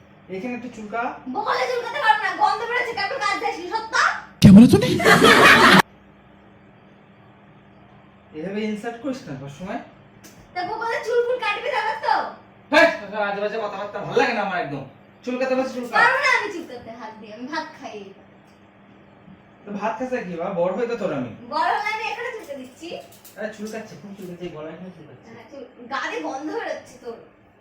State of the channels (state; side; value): identical; both; correlation 1.00